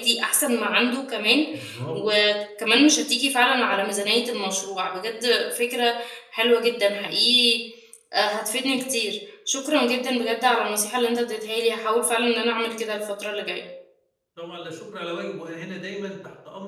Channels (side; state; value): both; identical; correlation 1.00